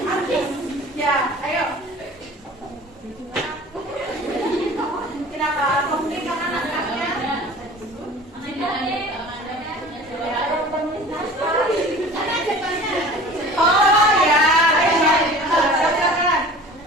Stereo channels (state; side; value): normal; both; correlation 0.43